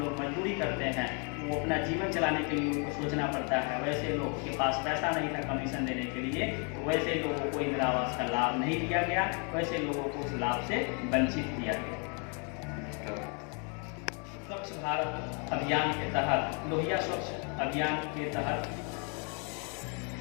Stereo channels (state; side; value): quieter; right; 36.8 dB